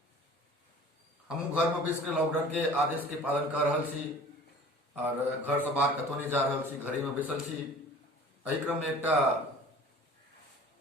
हमू घर में बैस के लॉकडाउन के आदेश के पालन कर रहल छी और घर से बाहर कतौ नहीं जा रहल छी, घरे में बैसल छी। एहि क्रम में एकटा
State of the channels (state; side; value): normal; both; correlation 0.45